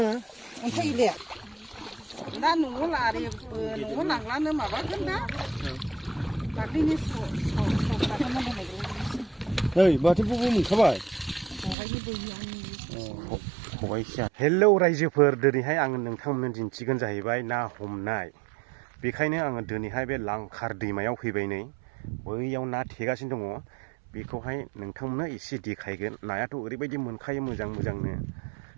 अन्थाइ इले दा न'आव लारेबो न'आव लांलानो माबागोन दा दाख्लैनि नै माथो बबो मोनखाबाय खबाइसिया हेलौ रायजोफोर दिनैहाय आङो नोंथांमोननो दिन्थिगोन जाहैबाय ना हमनाय बेखायनो आङो दिनैहाय बे लांखार दैमायाव फैबाय नै बैयाव ना थेगासिनो दङ बेखौहाय नोंथांमोननो एसे देखायगोन नायाथ' ओरैबायदि मोनखायो मोजांनो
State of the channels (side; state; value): left; drops out; at 11.8 s